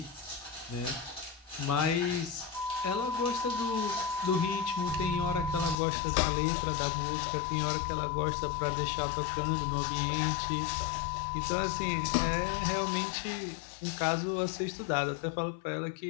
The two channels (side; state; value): right; drops out; at 5.8 s